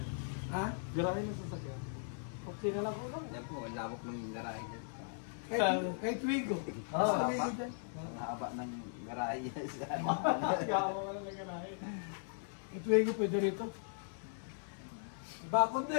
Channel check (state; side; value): silent; right; 52 dB below the other